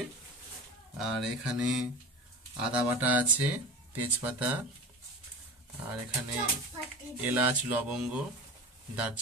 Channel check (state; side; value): normal; both; correlation 0.32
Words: আর এখানে আদা বাটা আছে, তেজপাতা, আর এখানে এলাচ, লবঙ্গ,